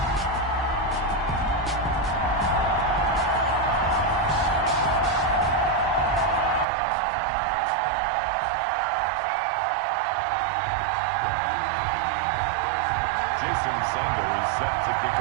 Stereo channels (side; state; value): left; drops out; at 6.7 s